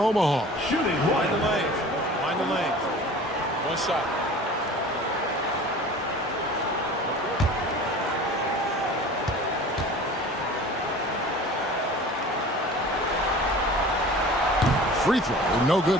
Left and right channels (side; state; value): both; normal; correlation 0.41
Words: Shooting one. Mind the lane. Mind the lane. One shot. Free throw, no good